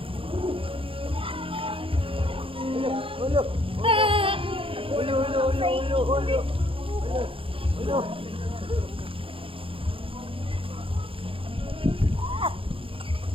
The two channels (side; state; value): left; late; 0.26 ms